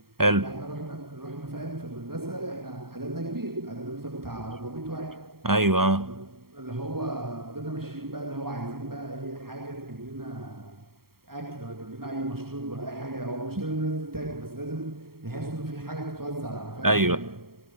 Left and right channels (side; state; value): left; late; 0.93 ms